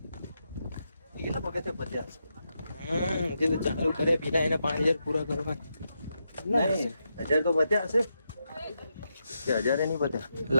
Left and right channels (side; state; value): both; inverted; correlation -0.84